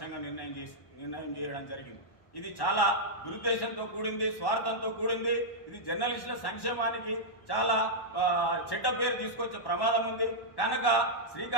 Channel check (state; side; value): late; right; 1.1 ms